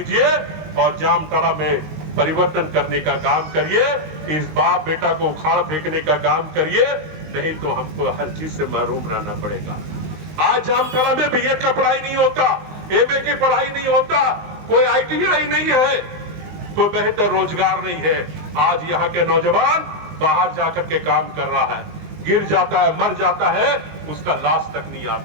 और जामताड़ा में परिवर्तन करने का काम करिए। इस बाप बेटा को उखाड़ फेंकने का काम करिए, नहीं तो हमको हर चीज से महरूम रहना पड़ेगा। आज जामताड़ा में बीएड का पढ़ाई नहीं होता, एमए की पढ़ाई नहीं होता, कोई आईटीआई नहीं है, कोई बेहतर रोजगार नहीं है। आज यहाँ के नौजवान बाहर जाकर के काम कर रहा है, गिर जाता है, मर जाता है, उसका लाश तक नहीं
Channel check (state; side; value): late; left; 19 ms